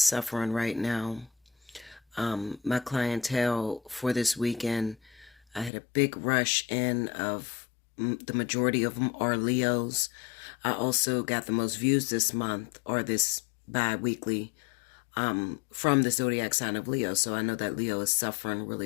suffering right now. My clientele for this weekend, I had a big rush in of the majority of them are Leos. I also got the most views this month, or this bi-weekly, from the zodiac sign of Leo. So I know that Leo is suffering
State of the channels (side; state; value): right; drops out; at 5.7 s